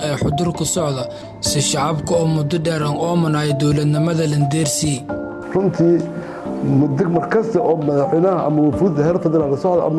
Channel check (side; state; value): both; identical; correlation 1.00